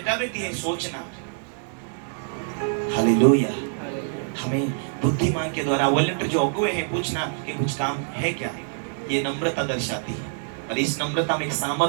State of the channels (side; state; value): left; silent; digital silence